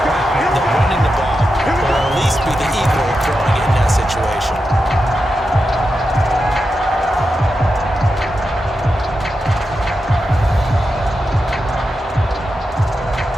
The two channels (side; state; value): both; normal; correlation 0.89